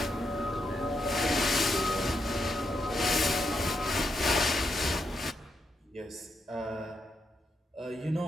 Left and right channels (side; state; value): both; normal; correlation 0.82